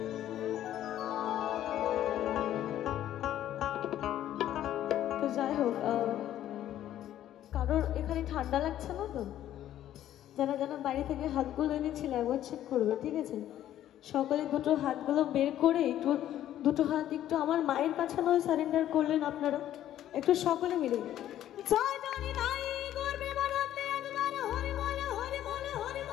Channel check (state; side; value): quieter; right; 12.1 dB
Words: তো যাই হোক, কারোর এখানে ঠান্ডা লাগছে না তো? যারা যারা বাইরে থেকে হাতগুলো এনেছিল একবার চেক করবে, ঠিক আছে? সকলে দুটো হাতগুলো বের করে একটু দুটো হাত একটু আমার মায়ের কাছে নয় সারেন্ডার করলেন আপনারা একটু সকলে মিলে। জয় জানি নাই গর্বে বানাতে একবার হরি বলে হরি বলে হরি